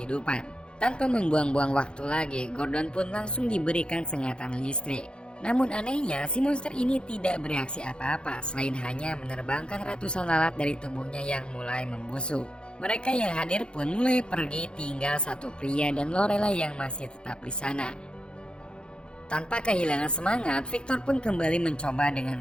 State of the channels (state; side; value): late; right; 0.053 ms